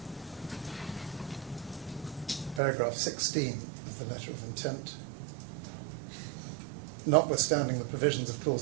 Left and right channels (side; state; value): left; drops out; at 2.6 s